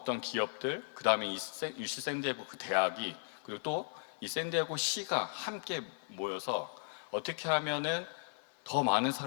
기업들, 그 다음에 이 UC 샌디에고 그 대학이, 그리고 또 이 샌디에고 시가 함께 모여서 어떻게 하면은 더 많은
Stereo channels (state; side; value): silent; right; 54 dB below the other